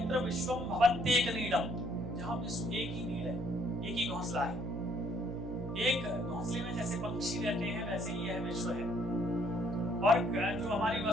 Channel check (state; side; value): noise; right; hum, 6 dB below the sound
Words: विश्वम भवत्येक नीडम, जहाँ विश्व एक ही नीड है, एक ही घोंसला है। एक घोंसले में जैसे पक्षी रहते हैं, वैसे ही यह विश्व है। और जो हमारी